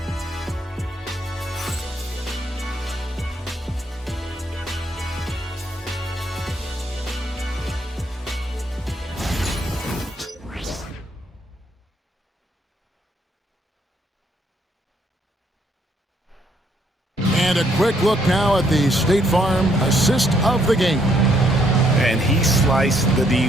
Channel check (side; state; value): both; normal; correlation 0.70